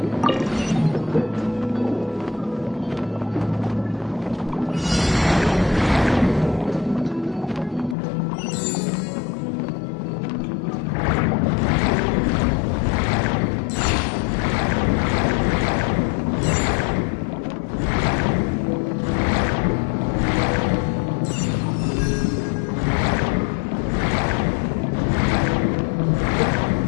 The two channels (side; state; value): right; drops out; at 8.0 s